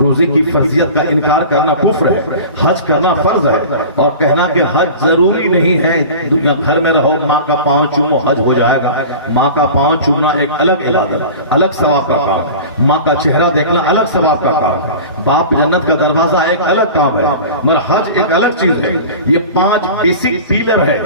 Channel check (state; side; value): inverted; both; correlation -0.36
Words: کی فرضیت کا انکار کرنا کفر ہے، حج کرنا فرض ہے، اور کہنا کہ حج ضروری نہیں ہے، دنیا گھر میں رہو ماں کا پاؤں چومو حج ہو جائے گا۔ ماں کا پاؤں چومنا ایک الگ عبادت، الگ ثواب کا کام، ماں کا چہرہ دیکھنا الگ ثواب کا کام، باپ جنت کا دروازہ ایک الگ کام ہے، مگر حج ایک الگ چیز ہے۔ یہ 5 بیسک پیلر